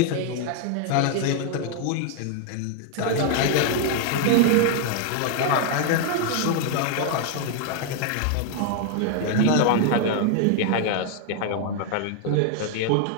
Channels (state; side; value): different; both; correlation 0.00